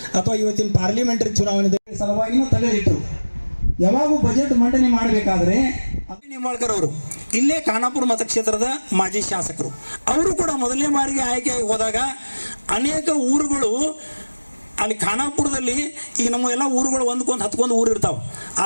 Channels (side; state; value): both; inverted; correlation -1.00